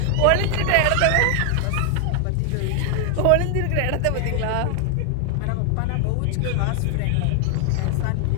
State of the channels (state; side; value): different; both; correlation 0.00